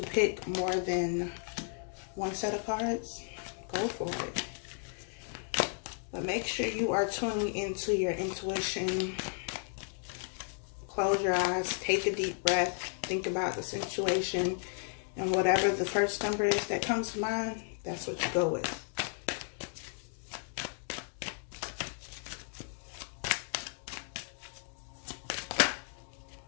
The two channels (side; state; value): right; silent; 55 dB below the other